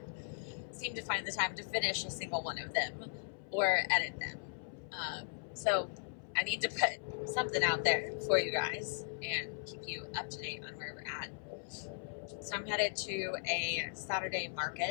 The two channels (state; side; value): silent; right; 53 dB below the other